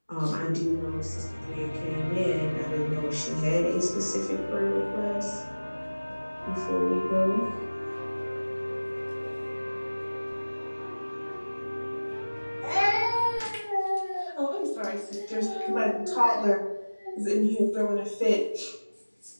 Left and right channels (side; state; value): both; inverted; correlation -1.00